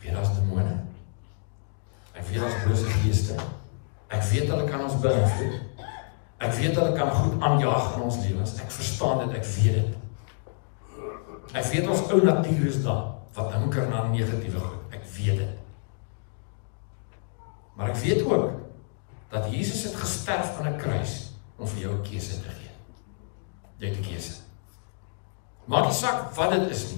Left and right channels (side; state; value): right; silent; digital silence